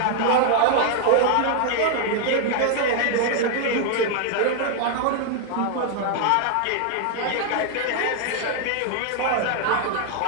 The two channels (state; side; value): different; both; correlation 0.00